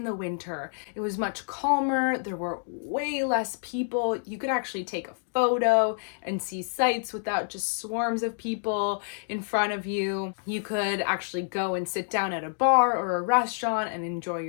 the winter. It was much calmer. There were way less people. You could actually take a photo and see sights without just swarms of people in front of you. You could actually go and sit down at a bar or a restaurant and enjoy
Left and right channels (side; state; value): right; silent; digital silence